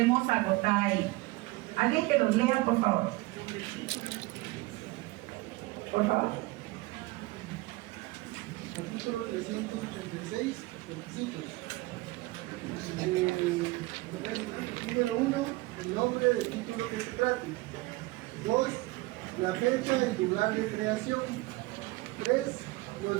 agotar ahí? ¿Alguien que los lea, por favor? Por favor. Artículo 386, requisitos. Número 1, el nombre del título que se trate. 2, la fecha y lugar de creación. 3,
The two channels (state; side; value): quieter; left; 21.2 dB